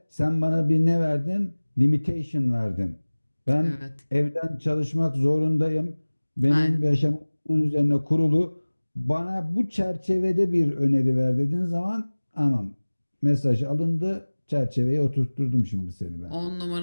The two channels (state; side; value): inverted; both; correlation -1.00